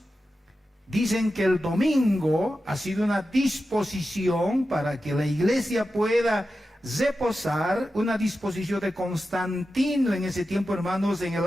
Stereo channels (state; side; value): normal; both; correlation 0.91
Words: dicen que el domingo ha sido una disposición para que la iglesia pueda reposar, una disposición de Constantino en ese tiempo, hermanos, en el